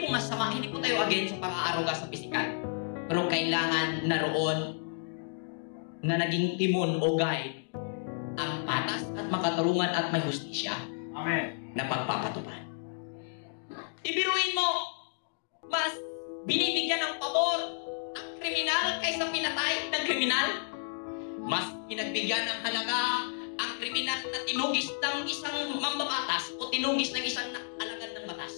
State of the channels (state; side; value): silent; right; digital silence